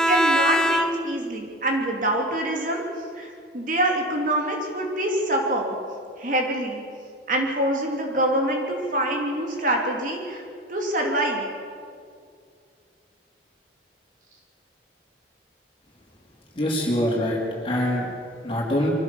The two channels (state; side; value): normal; both; correlation 0.34